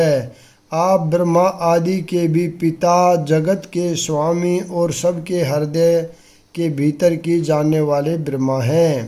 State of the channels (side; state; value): both; identical; correlation 1.00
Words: आप ब्रह्मा आदि के भी पिता, जगत के स्वामी और सबके हृदय के भीतर की जानने वाले ब्रह्मा